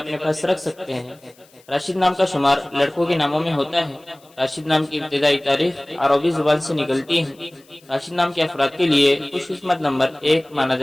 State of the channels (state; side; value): noise; left; hiss, 30 dB below the sound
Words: पास रख सकते हैं। राशिद नाम का शुमार लड़कों के नामों में होता है। राशिद नाम की इब्तिदाई तारीख अरबी जुबान से निकलती है। राशिद नाम के अफराद के लिए खुशकिस्मत नंबर 1 माना